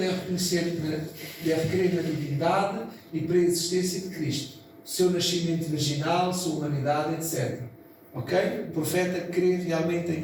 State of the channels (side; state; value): both; identical; correlation 1.00